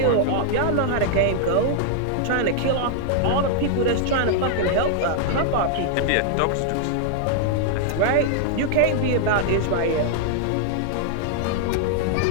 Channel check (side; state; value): both; different; correlation 0.00